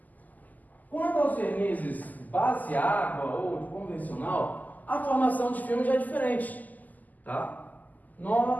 Quanto aos vernizes base água ou de convencional, a formação de filme já é diferente. Tá?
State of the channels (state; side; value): late; right; 0.081 ms